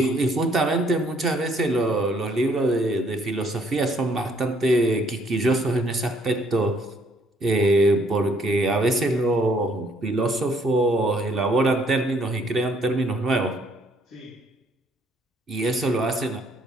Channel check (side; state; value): both; normal; correlation 0.66